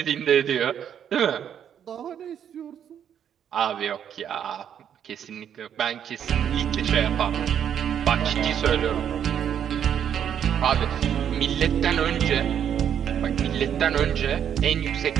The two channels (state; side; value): quieter; left; 9.0 dB